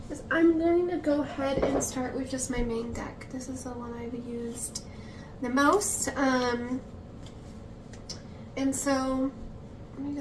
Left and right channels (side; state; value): both; identical; correlation 1.00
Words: is I'm going to go ahead and start with just my main deck. This is the one I've used the most. And so let me